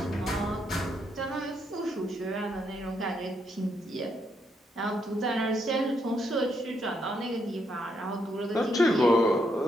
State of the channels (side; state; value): both; normal; correlation 0.77